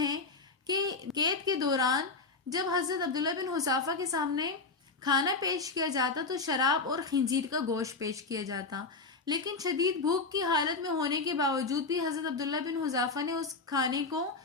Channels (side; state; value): right; quieter; 4.0 dB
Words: کہ قید کے دوران جب حضرت عبداللہ بن حذافہ کے سامنے کھانا پیش کیا جاتا تو شراب اور خنزیر کا گوشت پیش کیا جاتا، لیکن شدید بھوک کی حالت میں ہونے کے باوجود بھی حضرت عبداللہ بن حذافہ نے اس کھانے کو